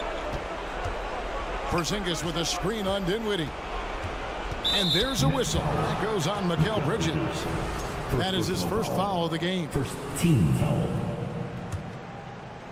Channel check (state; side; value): identical; both; correlation 1.00